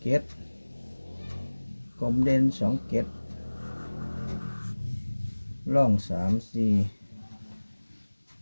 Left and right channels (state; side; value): inverted; both; correlation -1.00